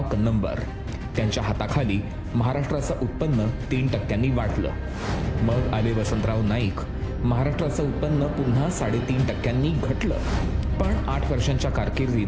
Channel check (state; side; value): identical; both; correlation 1.00